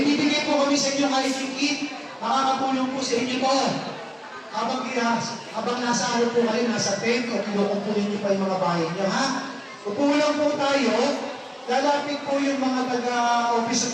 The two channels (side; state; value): both; identical; correlation 1.00